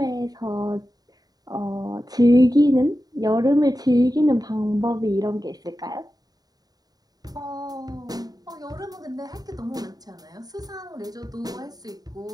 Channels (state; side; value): late; left; 0.18 ms